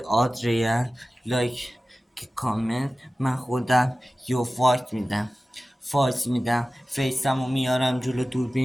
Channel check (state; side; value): normal; both; correlation 0.96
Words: آدریان. لایک که کامنت من خودم یو فایت میدم فیسمو میارم جلو